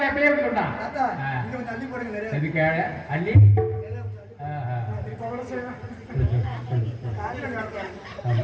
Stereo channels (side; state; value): both; identical; correlation 1.00